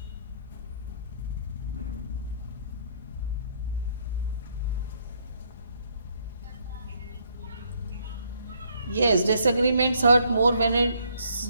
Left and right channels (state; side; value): inverted; both; correlation -0.68